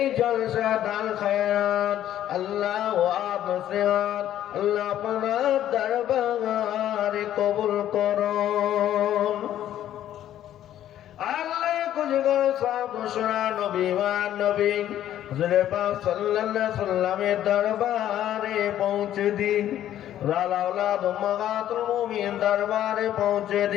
জলসা দান খায়রাত আল্লাহ ওয়াব নসিহত আল্লাহ আপনার দরবারে কবুল করুন। আল্লাহ কুজগর সাহেব শোনা নবী মান নবী হুজুরে পাক সাল্লাল্লাহু আলাইহি সাল্লামের দরবারে পৌঁছে দিন। লাউলাদ উম্মাহাতুল মুমিন দরবারে পৌঁছে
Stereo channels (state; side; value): quieter; right; 11.8 dB